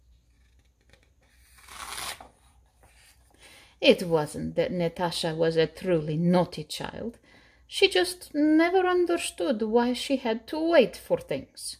It wasn't that Natasha was a truly naughty child. She just never understood why she had to wait for things.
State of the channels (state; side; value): identical; both; correlation 1.00